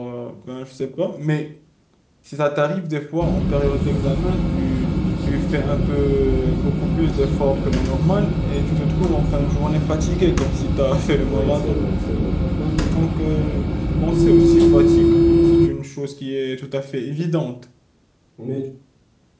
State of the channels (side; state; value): both; identical; correlation 1.00